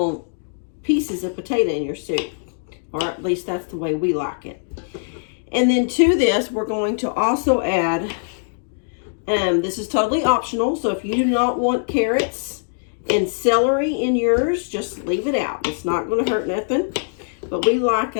pieces of potato in your soup, or at least that's the way we like it. And then to this, we're going to also add, this is totally optional, so if you do not want carrots and celery in yours, just leave it out. It's not going to hurt nothing. But we like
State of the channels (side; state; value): right; silent; digital silence